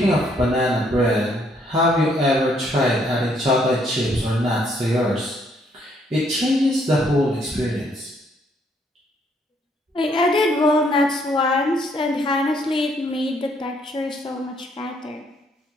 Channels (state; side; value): normal; both; correlation 0.68